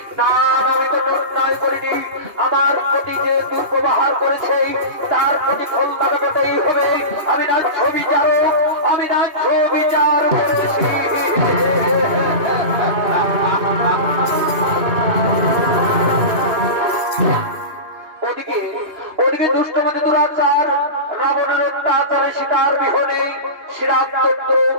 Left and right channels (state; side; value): late; left; 2.5 ms